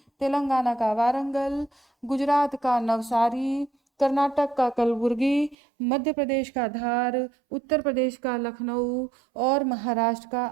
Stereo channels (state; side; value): drops out; left; at 5.6 s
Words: तेलंगाना का वारंगल, गुजरात का नवसारी, कर्नाटक का कलबुर्गी, मध्य प्रदेश का धार, उत्तर प्रदेश का लखनऊ और महाराष्ट्र का